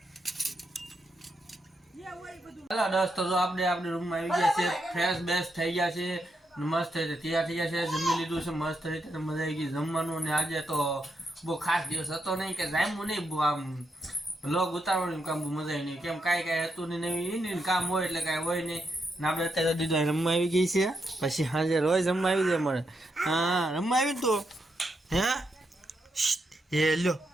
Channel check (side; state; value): both; normal; correlation 0.82